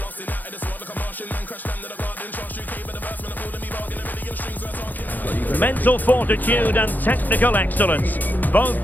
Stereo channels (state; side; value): late; right; 0.085 ms